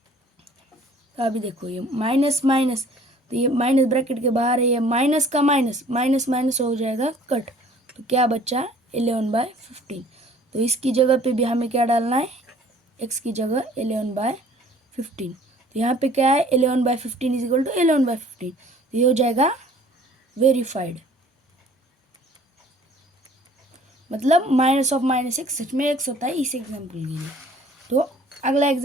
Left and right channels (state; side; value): normal; both; correlation 0.53